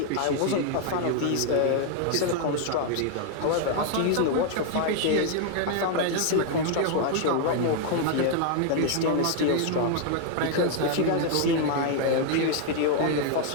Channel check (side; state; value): both; different; correlation 0.00